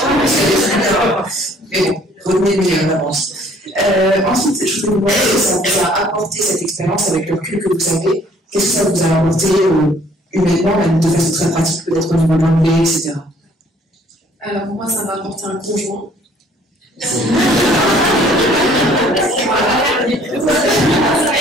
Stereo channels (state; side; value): normal; both; correlation 0.59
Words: Mais bon, retenez le meilleur d'avance. Ensuite, je voulais vous demander si ça vous a apporté cette expérience avec le recul que vous avez. Qu'est-ce que ça vous a apporté humainement, même de façon très pratique, peut-être au niveau de l'anglais, etc. Alors moi, ça m'a apporté un conjoint. Tout